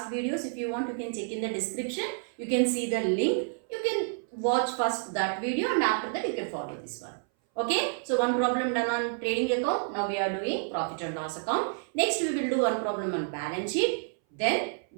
videos. If you want, you can check in the description. You can see the link. You can watch first that video and after that you can follow this one. Okay, so one problem done on trading account. Now we are doing profit and loss account. Next we will do one problem on balance sheet. Then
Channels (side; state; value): left; silent; 58 dB below the other